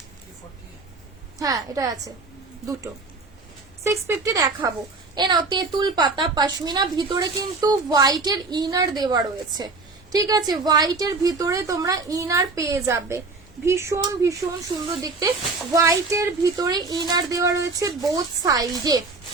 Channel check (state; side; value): quieter; left; 3.8 dB